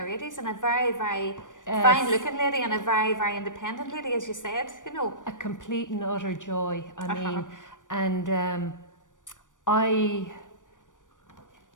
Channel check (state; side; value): late; right; 0.87 ms